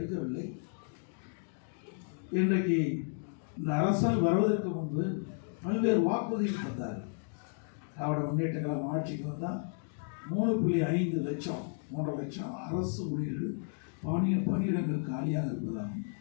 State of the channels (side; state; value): right; silent; 56 dB below the other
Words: இன்றைக்கு இந்த அரசாங்கம் வருவதற்கு முன்பு பல்வேறு வாக்குறுதிகள் தந்தார். திராவிட முன்னேற்ற கழகம் ஆட்சிக்கு வந்தால் 3.5 லட்சம் 3 லட்சம் அரசு ஊழியர்கள் பணியிடங்கள் காலியாக இருப்பதாகவும்,